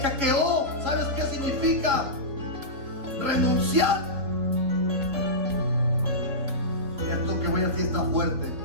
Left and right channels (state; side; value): late; left; 3.9 ms